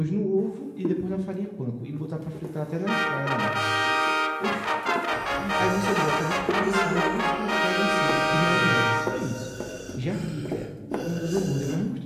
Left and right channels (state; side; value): identical; both; correlation 1.00